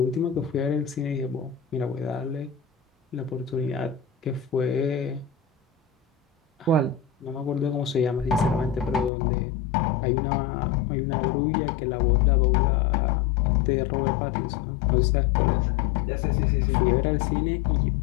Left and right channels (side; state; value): right; drops out; at 9.1 s